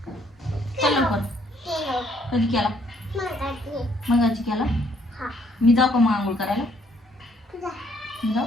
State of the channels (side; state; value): both; normal; correlation 0.66